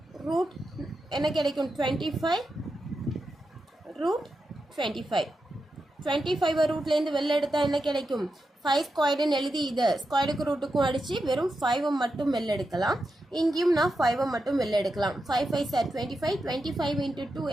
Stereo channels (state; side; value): normal; both; correlation 0.88